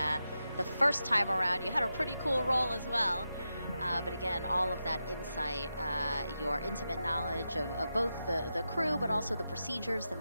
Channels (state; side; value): inverted; both; correlation -0.89